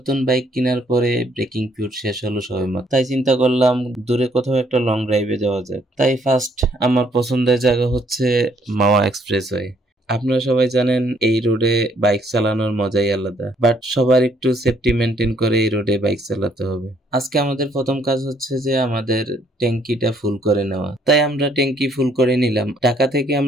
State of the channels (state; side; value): normal; both; correlation 0.67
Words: বাইক কেনার পরে ব্রেকিং পিরিয়ড শেষ হলো সবেমাত্র, তাই চিন্তা করলাম দূরে কোথাও একটা লং ড্রাইভে যাওয়া যাক। তাই ফার্স্ট আমার পছন্দের জায়গা হচ্ছে মাওয়া এক্সপ্রেসওয়ে। আপনারা সবাই জানেন এই রোডে বাইক চালানোর মজাই আলাদা, বাট সবার একটু সেফটি মেনটেন করে এই রোডে বাইক চালাতে হবে। আজকে আমাদের প্রথম কাজ হচ্ছে যে আমাদের ট্যাঙ্কিটা ফুল করে নেওয়া, তাই আমরা ট্যাঙ্কি ফুল করে নিলাম। ঢাকা থেকে